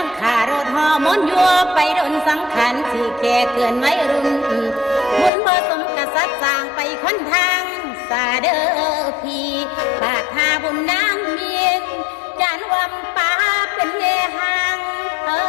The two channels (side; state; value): right; drops out; at 5.3 s